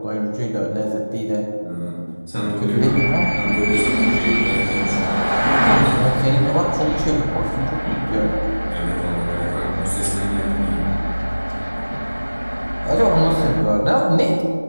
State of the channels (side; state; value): both; inverted; correlation -1.00